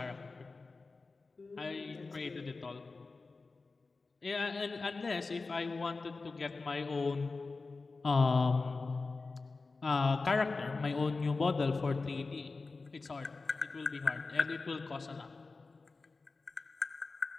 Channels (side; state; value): right; quieter; 3.9 dB